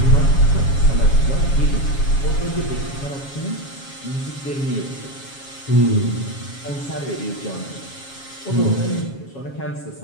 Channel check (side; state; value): right; late; 7.3 ms